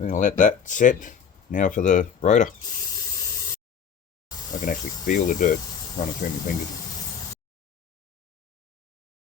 going to let that set. Now for the rotor. I can actually feel the dirt running through my fingers.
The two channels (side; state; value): right; quieter; 7.1 dB